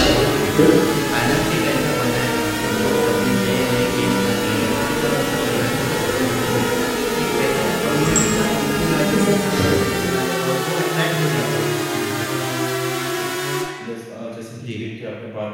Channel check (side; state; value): both; identical; correlation 1.00